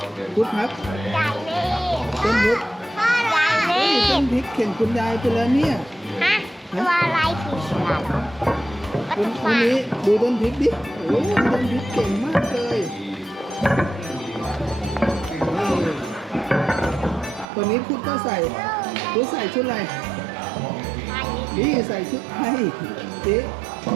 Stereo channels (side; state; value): left; drops out; at 17.4 s